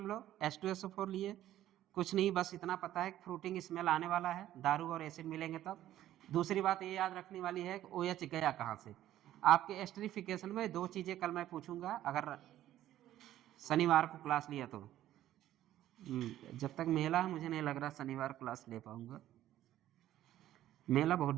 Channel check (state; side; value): quieter; left; 13.0 dB